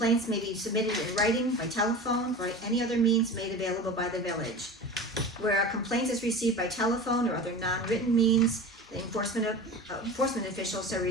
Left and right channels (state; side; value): normal; both; correlation 0.33